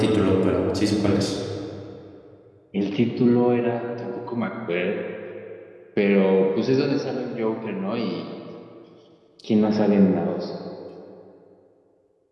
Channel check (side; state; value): both; identical; correlation 1.00